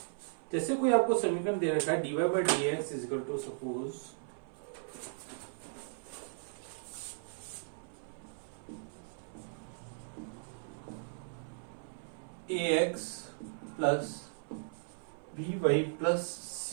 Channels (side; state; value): left; silent; 53 dB below the other